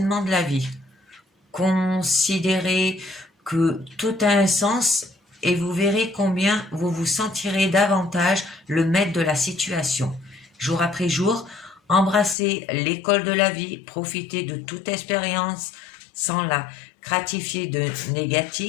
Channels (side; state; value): right; drops out; at 12.4 s